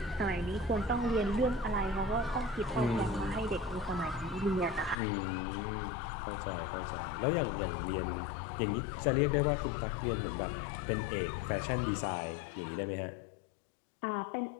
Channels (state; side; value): drops out; right; at 5.0 s